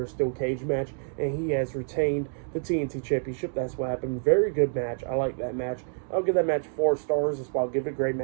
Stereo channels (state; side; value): silent; left; 60 dB below the other